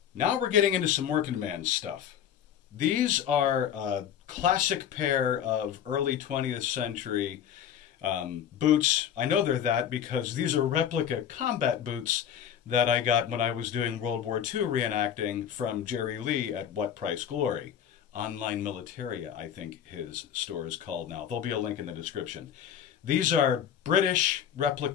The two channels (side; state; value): right; quieter; 9.3 dB